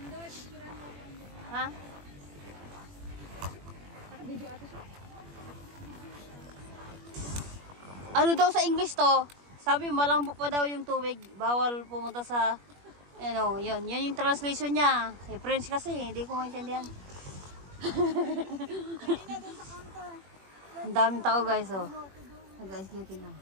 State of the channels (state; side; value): late; left; 21 ms